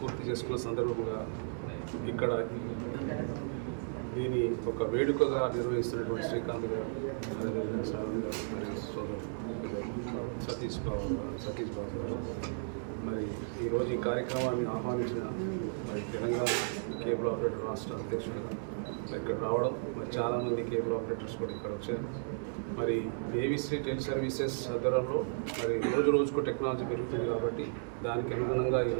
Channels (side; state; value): left; silent; 55 dB below the other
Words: పూర్తి చేసుకున్న సందర్భంగా ఇక్కడ దీని ఒక వేడుకగా నిర్వహిస్తున్నటువంటి శ్రీకాంత్ గారు, సతీష్ బాబు గారు, మరి ఈరోజు ఈ కార్యక్రమాన్ని ఆహ్వానించిన తెలంగాణ కేబుల్ ఆపరేటర్ రాష్ట్ర అధ్యక్షుడు ఇక్కడ రావడం, మరి చాలామంది కేబుల్ ఆపరేటర్స్ కూడా ఇక్కడ వచ్చారు. మరి ఏవిసి టెలి సర్వీసెస్ ఆధ్వర్యంలో మరి రోజుకు టెక్నాలజీ పెరుగుతుంది కాబట్టి దానికి అనుగుణంగా